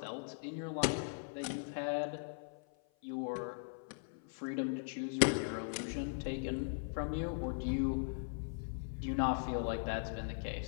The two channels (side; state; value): right; silent; 51 dB below the other